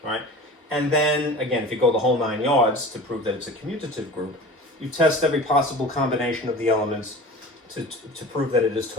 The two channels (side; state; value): both; normal; correlation 0.37